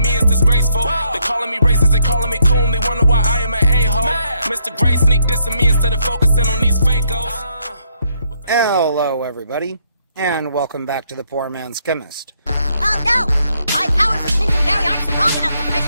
me, it's disgraceful. They calling me racist, they calling me coon, they wonder why I am an a-hole. Mr. Gray sneak dissing me instead of focusing on these fakos. Hello, everybody, and welcome back to the Poor Man's Chemist. Oh no! My powers of Lincolnberry aren't strong enough to press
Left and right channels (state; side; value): inverted; both; correlation -0.72